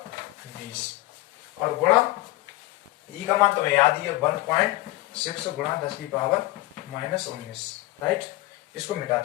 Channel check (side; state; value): right; quieter; 18.8 dB